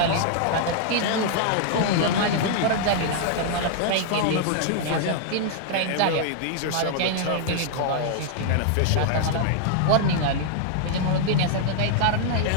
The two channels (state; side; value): different; both; correlation -0.01